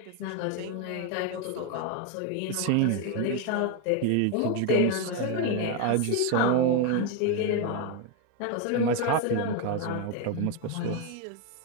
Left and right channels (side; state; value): both; different; correlation 0.01